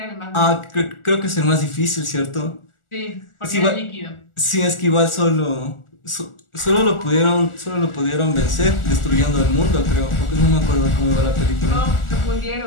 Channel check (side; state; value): right; late; 1.4 ms